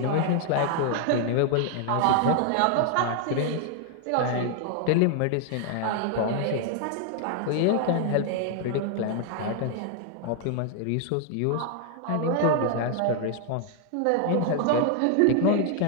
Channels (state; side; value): different; both; correlation 0.00